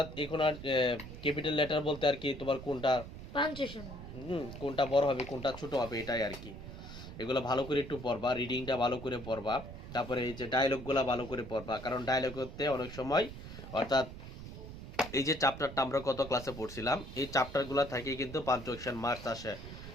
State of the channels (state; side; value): noise; right; rumble, 12 dB below the sound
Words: এখন আর ক্যাপিটাল লেটার বলতে আর কি তোমার কোনটা পাঞ্চুয়েশন, কোনটা বড় হবে কোনটা ছোট হবে এটাই আর কি। এগুলো ভালো করে একটু পড়বা, রিডিংটা ভালো করে পড়বা। তারপরে এই যে ডায়লগগুলো ভালো করে পড়বা, কারণ ডায়লগ করতে অনেক সময়, অর্থাৎ এই যে চ্যাপ্টারটা আমরা কত ক্লাসে পড়ছিলাম, এই চ্যাপ্টারগুলো থেকে কিন্তু পাঞ্চুয়েশন মার্কস আসে।